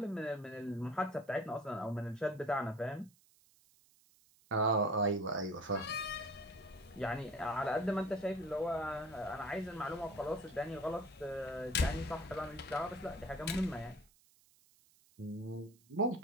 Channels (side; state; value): right; noise; hiss, 29 dB below the sound